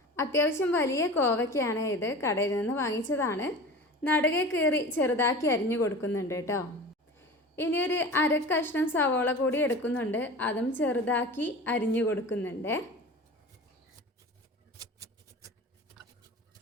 അത്യാവശ്യം വലിയ കോവയ്ക്കാണ് ഇത്. കടയിൽ നിന്ന് വാങ്ങിച്ചതാണ്. നടുകെ കീറി ചെറുതാക്കി അരിഞ്ഞു കൊടുക്കുന്നുണ്ട് കേട്ടോ. ഇനി ഒരു അരക്കഷ്ണം സവോള കൂടി എടുക്കുന്നുണ്ട്. അതും ചെറുതാക്കി അരിഞ്ഞു കൊടുക്കുന്നുണ്ട്.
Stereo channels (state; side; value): normal; both; correlation 0.35